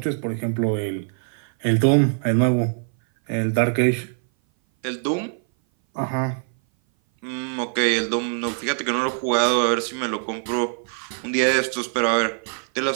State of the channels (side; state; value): left; silent; 58 dB below the other